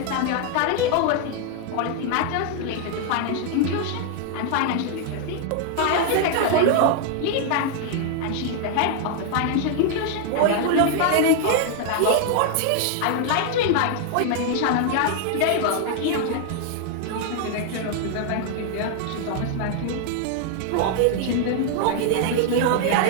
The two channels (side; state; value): both; different; correlation 0.00